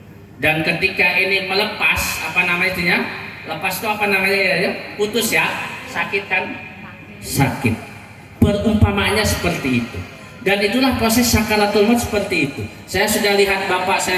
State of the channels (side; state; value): both; identical; correlation 1.00